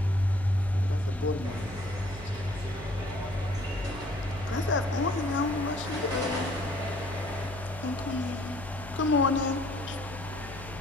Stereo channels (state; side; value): noise; left; hum, 14 dB below the sound